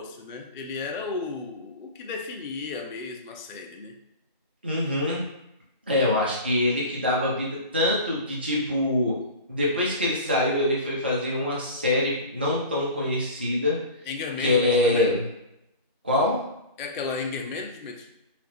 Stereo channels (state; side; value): inverted; both; correlation -0.32